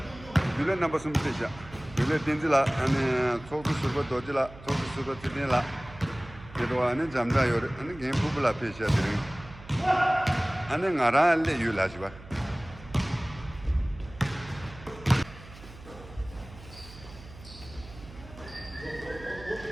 빌런 넘버 좀 되자. 빌런 딘질라 아니 소스 수버 도질라 소스 수버 tidin라. 그래도 아니 잠다요. 아니 게임 부블라 페이지야 드림. 아니 나라래 유라지와.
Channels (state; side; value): noise; right; hum, 18 dB below the sound